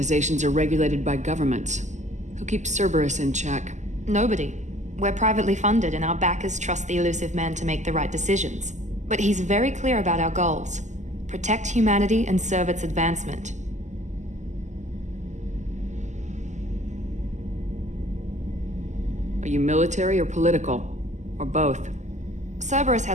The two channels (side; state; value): left; late; 0.34 ms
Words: are regulated by governments. Who keeps Cerberus in check? Nobody. We're privately funded and our backers trust the elusive man to make the right decisions. But he's very clear about our goals. Protect humanity and serve its advancement. Are you military or political? Or both? Cerberus